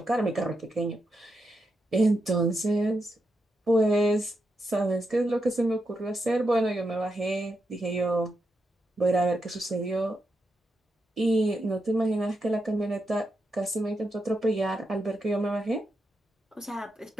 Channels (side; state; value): both; normal; correlation 0.85